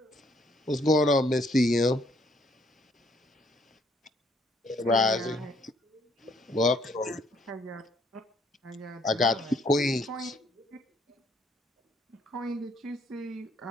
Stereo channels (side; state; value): both; normal; correlation 0.66